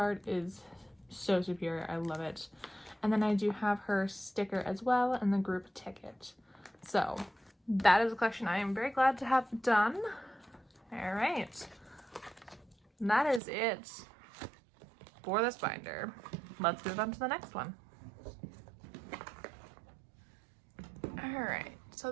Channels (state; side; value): drops out; left; at 13.4 s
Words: is so superior, I love it. And then I do have her sticker as well and the group ticket. So that is a collection I am very glad to have done. All right, that is it for this binder. Let's move on to the next one. All right, so